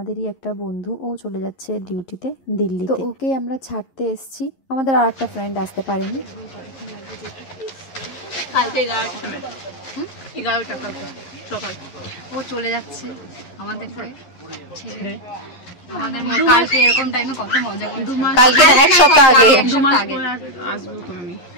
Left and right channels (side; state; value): right; late; 11 ms